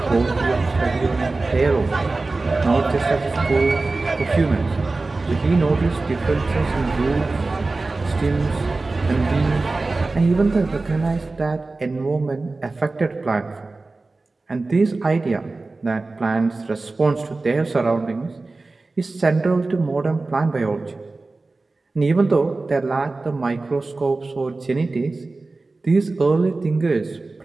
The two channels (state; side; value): quieter; left; 3.4 dB